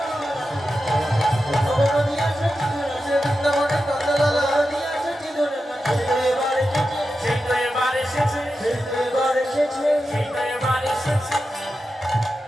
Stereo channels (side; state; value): both; normal; correlation 0.90